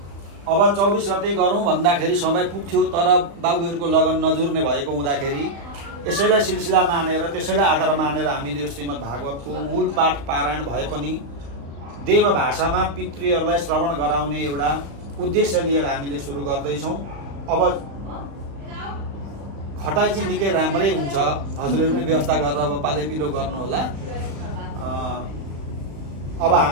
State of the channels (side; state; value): left; late; 35 ms